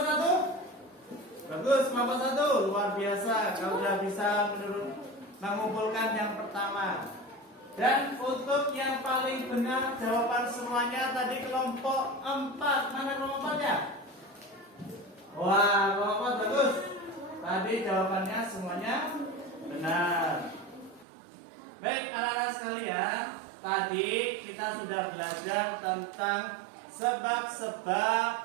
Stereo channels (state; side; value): drops out; left; at 21.1 s